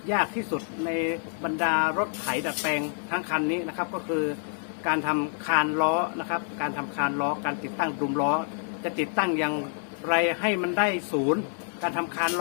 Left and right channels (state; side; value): silent; right; 60 dB below the other